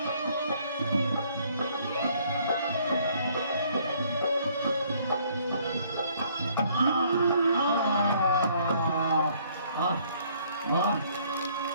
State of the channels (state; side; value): inverted; both; correlation -0.62